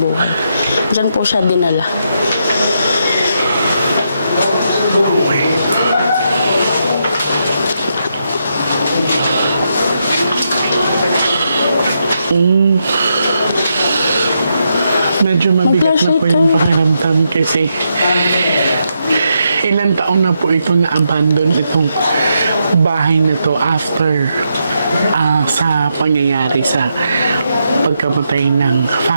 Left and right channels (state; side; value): inverted; both; correlation -0.81